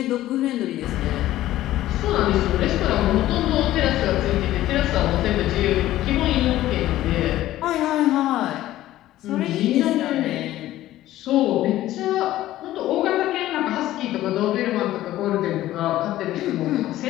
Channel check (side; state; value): right; quieter; 14.6 dB